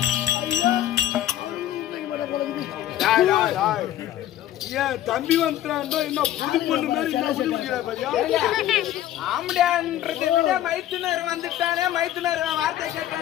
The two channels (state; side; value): quieter; right; 12.8 dB